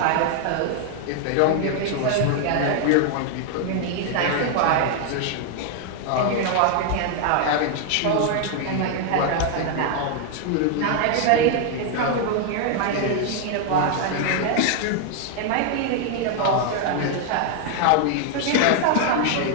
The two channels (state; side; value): different; both; correlation 0.00